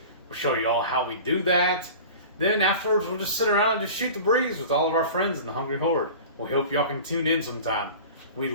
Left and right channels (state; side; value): inverted; both; correlation -0.38